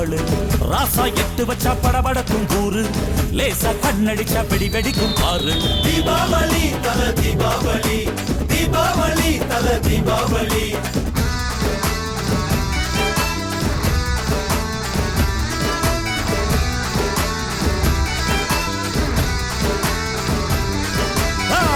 ராசா எட்டு வச்சா படபடக்கும் கூறு, லேசா கண்ணடிச்சா வெடி வெடிக்கும் பாரு. தீபாவளி தல தீபாவளி, தீபாவளி தல தீபாவளி.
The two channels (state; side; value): identical; both; correlation 1.00